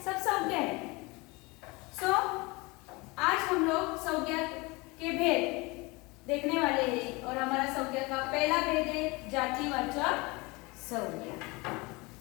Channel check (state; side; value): quieter; right; 25.0 dB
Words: सब संज्ञा है। सो आज हम लोग संज्ञा के भेद देखने वाले हैं और हमारा संज्ञा का पहला भेद है जातिवाचक संज्ञा।